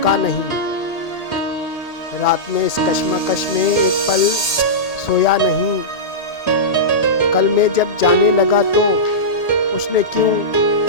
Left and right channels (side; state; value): right; late; 1.8 ms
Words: नहीं। रात में इस कश्मकश में एक पल सोया नहीं। कल में जब जाने लगा तो उसने क्यों